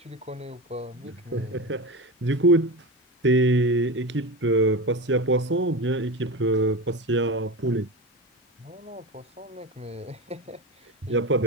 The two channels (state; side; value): normal; both; correlation 0.23